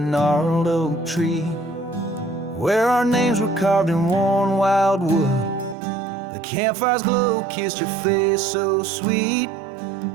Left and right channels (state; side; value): drops out; left; at 5.8 s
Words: oak tree, where our names were carved in worn wild wood, the campfire's glow kissed your face so sweet